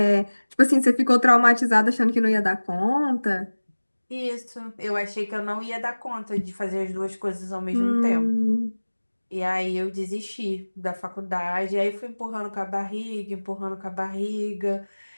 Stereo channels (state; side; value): inverted; both; correlation -1.00